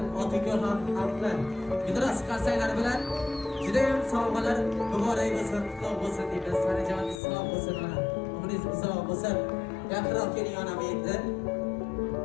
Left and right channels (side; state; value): right; drops out; at 7.2 s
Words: otinglar ham haqlar. Gidros qarsaylar bilan juda ham sovg'alar muborak bo'lsin, qutlug' bo'lsin deymiz. Sanajoningiz sog' bo'lsin ona. Umringiz uzoq bo'lsin. Yaqinroq keling onam endi.